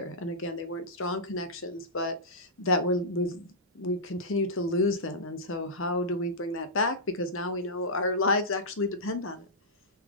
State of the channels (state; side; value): normal; both; correlation -0.14